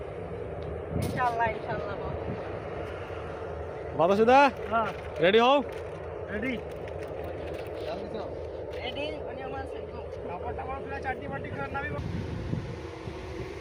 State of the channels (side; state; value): both; identical; correlation 1.00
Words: ইনশাআল্লাহ ইনশাআল্লাহ বাতাসুদা? হ্যাঁ রেডি হও। রেডি রেডি মানে আমার কাপড়টা পুরো চাটনি পাটি করে নামি।